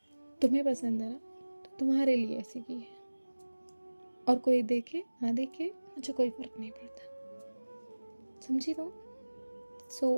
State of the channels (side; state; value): both; inverted; correlation -1.00